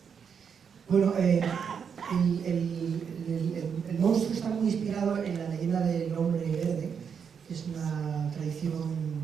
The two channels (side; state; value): left; quieter; 6.9 dB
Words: Bueno, el monstruo está muy inspirado en la leyenda del hombre verde, que es una tradición